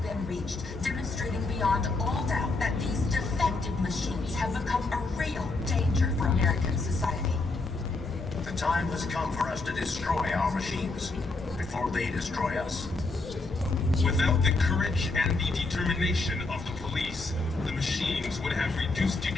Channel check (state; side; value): quieter; right; 3.4 dB